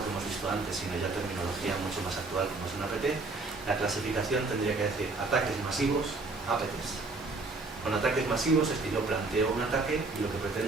que hemos visto antes, sino ya terminología mucho más actual como es un APT, la clasificación tendría que decir ataques masivos, APTs. Con ataques masivos es que yo planteo un ataque y lo que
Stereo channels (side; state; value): left; quieter; 3.5 dB